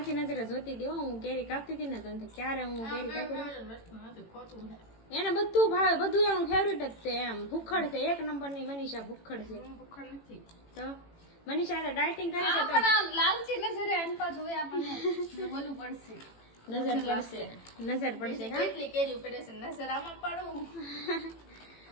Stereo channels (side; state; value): right; late; 18 ms